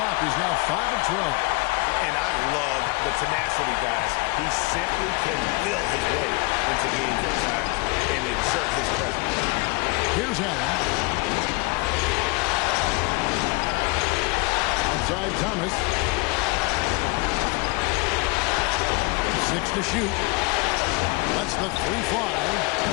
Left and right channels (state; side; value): quieter; right; 27.5 dB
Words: He's now 5 of 12. And I love the tenacity, guys. He simply can will his way into games at times and exert his presence. Here's Allen. Outside Thomas. 6 to shoot. Lets the 3 fly.